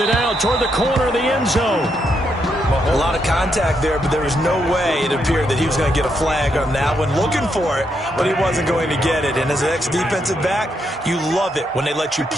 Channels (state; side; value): normal; both; correlation 0.79